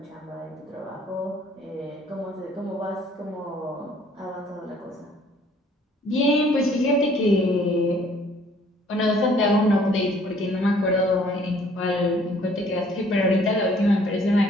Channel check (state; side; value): normal; both; correlation 0.59